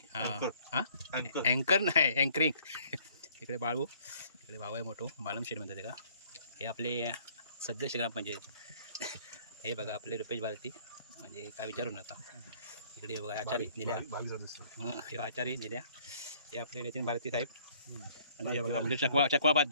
हां हां, अँकर नाही, अँकरिंग. इकडे बाळू, इकडे भाऊ आहे मोठो, मालमशेठ म्हणतात का. हे आपले सदस्य ग्रामपंचायत. हे बघा आपले रुपेश भारती, म्हणजे काय विचारू नका. इकडे बघा आचारी निल्या, हे आचारी निल्या. हे आपले नितीन भारती साहेब. आणि हे बघा आपले चकवा भात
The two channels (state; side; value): inverted; both; correlation -0.59